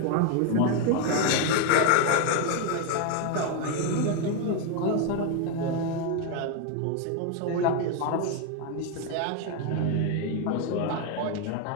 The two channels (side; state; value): both; different; correlation 0.01